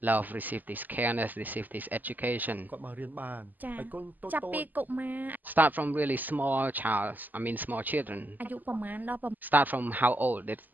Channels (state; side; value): late; left; 0.085 ms